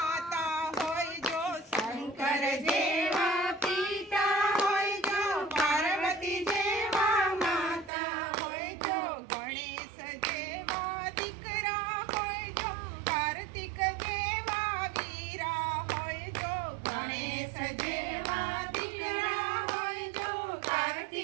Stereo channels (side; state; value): left; drops out; at 7.9 s